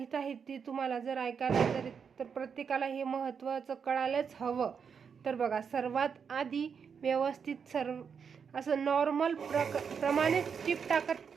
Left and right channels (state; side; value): quieter; left; 6.5 dB